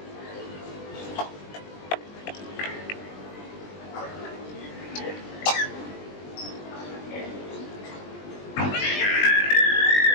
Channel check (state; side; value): late; right; 20 ms